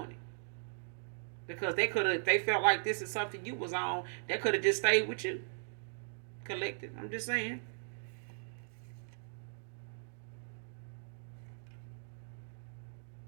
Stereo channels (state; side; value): silent; left; digital silence